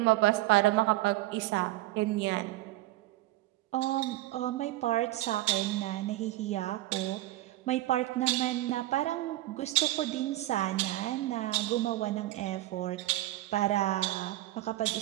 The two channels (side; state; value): left; quieter; 16.6 dB